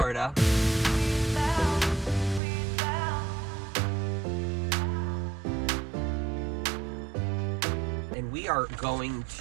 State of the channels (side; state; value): left; drops out; at 2.4 s